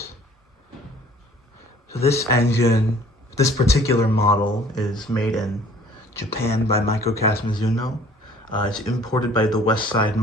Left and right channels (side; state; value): both; normal; correlation 0.53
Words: So this engine, this particular model, is made in Japan by Mizuno. It's imported by the Westside